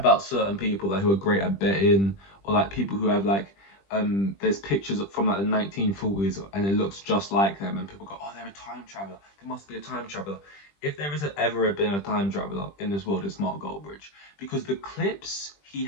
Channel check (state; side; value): late; right; 20 ms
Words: certain people like who are great at betting, or like people who have like there's pictures from like the 1940s and it looks just like them, and people go, oh, they're a time traveler, they must be a time traveler. If there has ever been a time traveler in this world, it's Mark Goldbridge, because the clips he